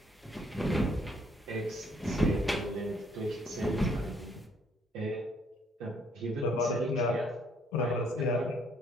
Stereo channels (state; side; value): normal; both; correlation 0.66